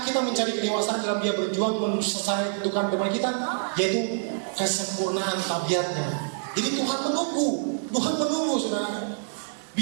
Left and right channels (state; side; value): silent; left; digital silence